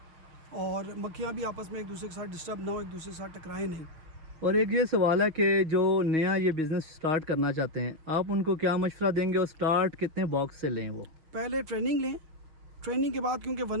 और मक्खियाँ भी आपस में एक दूसरे के साथ डिस्टर्ब ना हो, एक दूसरे के साथ टकराएं नहीं। और एक ये सवाल है कि जो नया ये बिज़नेस स्टार्ट करना चाहते हैं, आप उनको क्या मशवरा देंगे, और स्टार्ट कितने बॉक्स से लें वो। पहले ट्रेनिंग लें, ट्रेनिंग के बाद, क्योंकि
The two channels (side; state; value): left; late; 6.0 ms